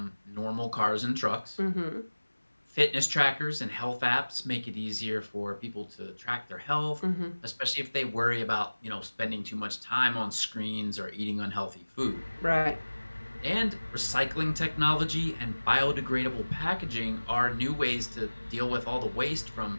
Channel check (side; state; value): both; inverted; correlation -1.00